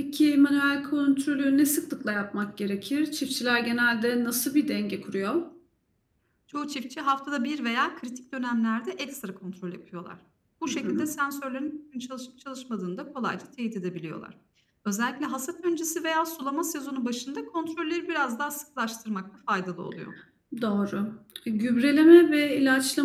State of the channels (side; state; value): both; identical; correlation 1.00